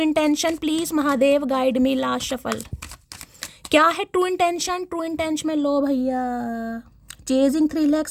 please Mahadev guide me. Last shuffle, क्या है ट्रू इंटेंशन, ट्रू इंटेंशन में लो भैया, चेजिंग थ्रिल है,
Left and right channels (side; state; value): both; identical; correlation 1.00